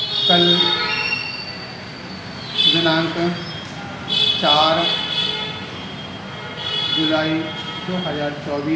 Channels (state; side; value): identical; both; correlation 1.00